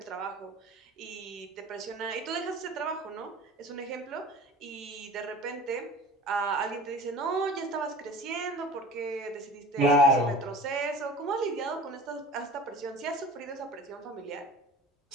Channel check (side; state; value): both; normal; correlation 0.40